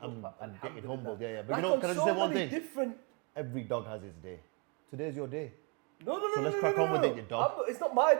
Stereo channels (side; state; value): left; quieter; 34.4 dB